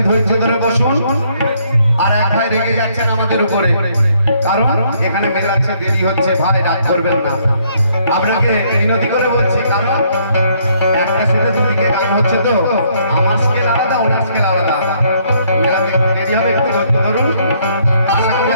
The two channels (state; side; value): inverted; both; correlation -0.67